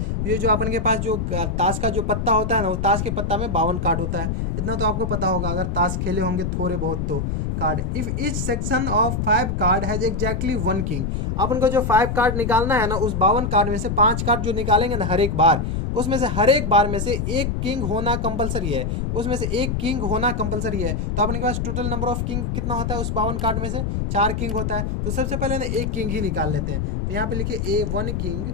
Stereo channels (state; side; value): noise; left; rumble, 1 dB below the sound